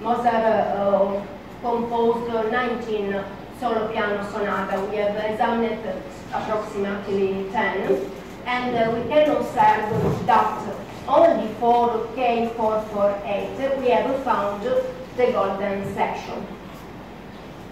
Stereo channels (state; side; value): identical; both; correlation 1.00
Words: Mozart composed 19 solo piano sonata. We have examined approximately 10, and we can observe that only for K448 we have found the golden section.